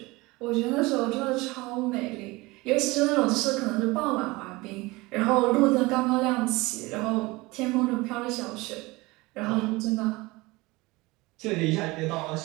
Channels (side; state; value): left; quieter; 22.4 dB